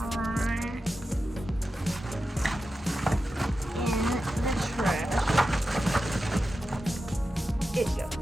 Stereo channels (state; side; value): normal; both; correlation 0.91